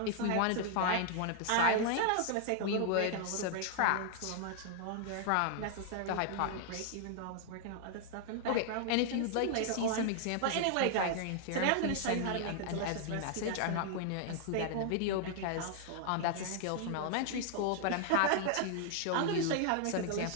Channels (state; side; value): different; both; correlation 0.00